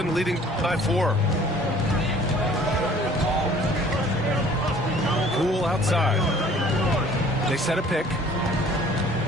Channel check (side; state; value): both; normal; correlation 0.53